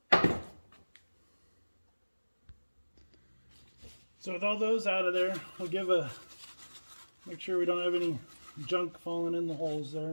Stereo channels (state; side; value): inverted; both; correlation -1.00